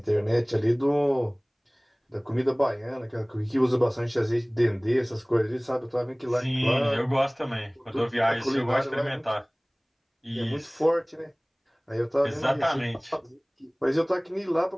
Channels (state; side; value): identical; both; correlation 1.00